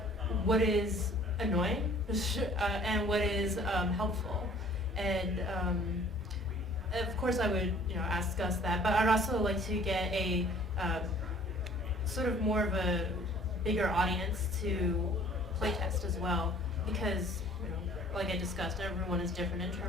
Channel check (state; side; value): normal; both; correlation 0.53